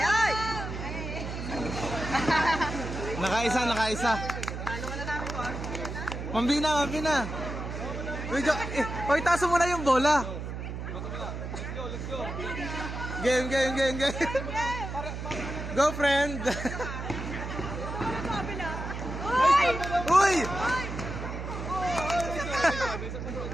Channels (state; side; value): noise; right; hum, 6 dB below the sound